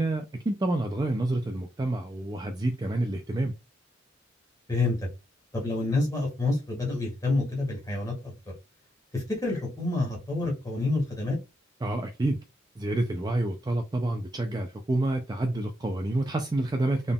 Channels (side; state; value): both; normal; correlation 0.82